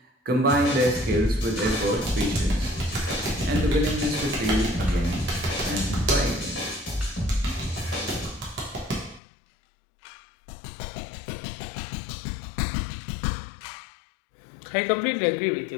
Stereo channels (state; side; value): drops out; right; at 9.2 s